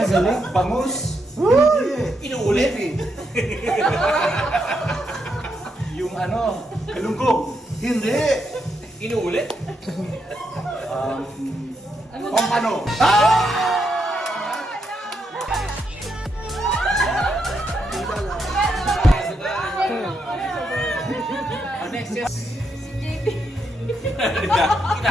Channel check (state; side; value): normal; both; correlation 0.80